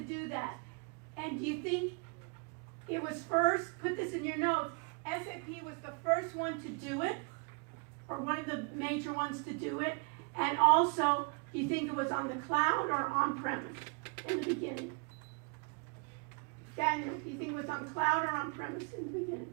that. And do you think it was first? Put this in your notes. SAP was the first one to do it, or one of the major ones to do it. And also, do you think it was on the cloud or on-premise in the beginning? Daniel, do you think it was on cloud or on-premise in the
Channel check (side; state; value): left; quieter; 35.8 dB